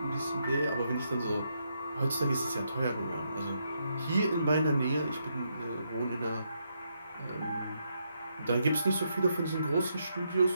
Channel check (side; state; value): both; inverted; correlation -0.79